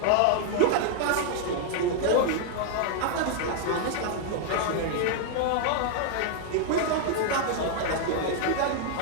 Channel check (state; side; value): different; both; correlation 0.00